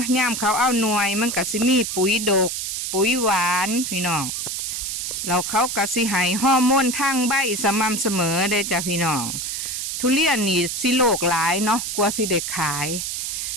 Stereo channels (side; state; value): right; noise; hiss, 3 dB below the sound